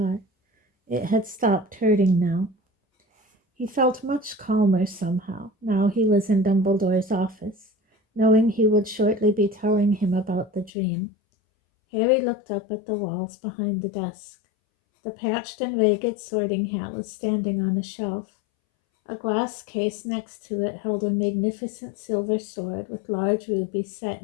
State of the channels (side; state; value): right; drops out; at 10.7 s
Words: It had stopped hurting now. He felt much calmer somehow, now he was in Dumbledore's office, knowing he would shortly be telling him about the dream. Harry looked up at the walls behind the desk. The patched and ragged sorting hat was standing on a shelf. A glass case next to it held a magnificent silver sword with large rubies set